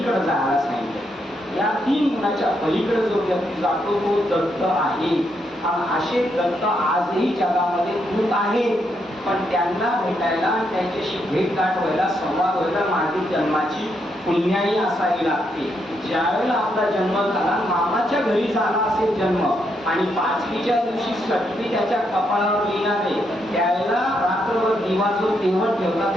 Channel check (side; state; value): both; normal; correlation 0.78